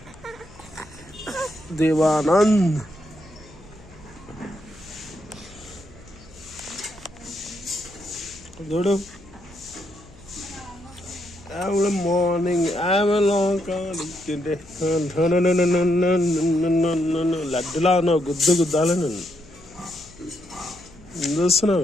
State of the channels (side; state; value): left; noise; hum, 23 dB below the sound